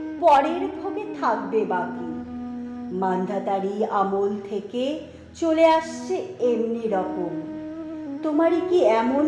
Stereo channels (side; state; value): both; identical; correlation 1.00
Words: পরের ভোগে থাকবে বাকি। মান্ধাতারি আমল থেকে চলে আসছে এমনি রকম। তোমারই কি এমন